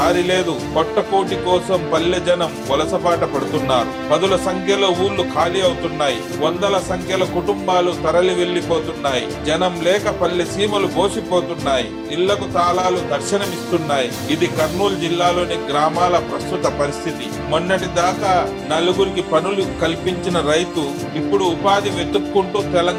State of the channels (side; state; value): both; identical; correlation 1.00